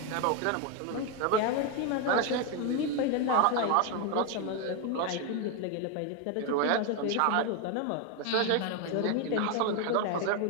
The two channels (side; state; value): both; different; correlation 0.01